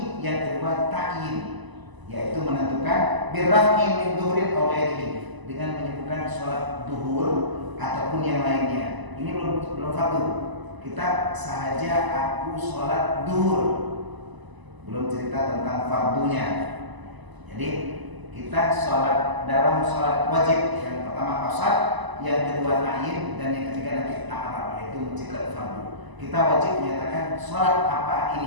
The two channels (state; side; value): late; left; 1.0 ms